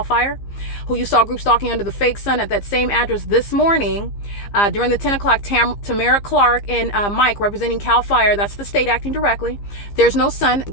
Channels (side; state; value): right; late; 15 ms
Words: FIRE, who you saw group stalking under the fake sun at that same address this morning during the 10 o'clock. Tamara Clark and Mike representing CAL FIRE, that's the state acting directly. There's no sun.